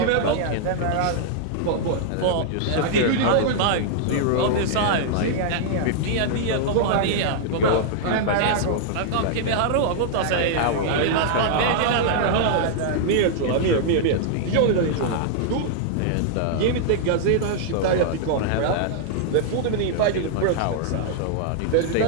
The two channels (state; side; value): different; both; correlation -0.01